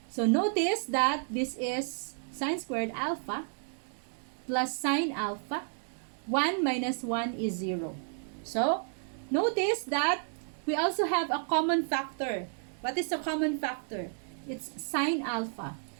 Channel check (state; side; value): silent; left; 56 dB below the other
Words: So notice that this is sine squared alpha plus sine alpha. 1 minus 1 is 0. So, notice that we also have a common factor. What is the common factor? It's sine alpha.